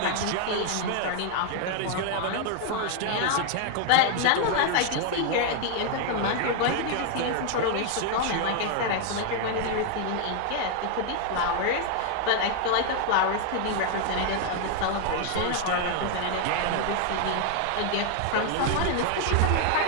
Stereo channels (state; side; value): different; both; correlation 0.00